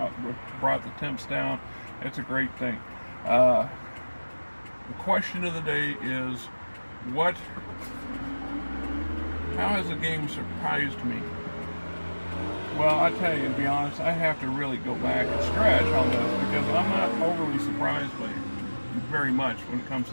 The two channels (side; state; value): both; inverted; correlation -1.00